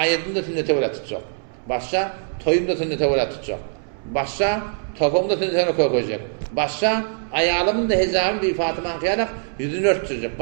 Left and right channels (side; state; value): left; silent; 64 dB below the other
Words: sünnete öğütecek. Başka toyumda sünnete öğütecek. Başka topumda sünnete koyacak. Başka ayağımın da hezabım bir Fatıma kıyarak yüzünü örtecek.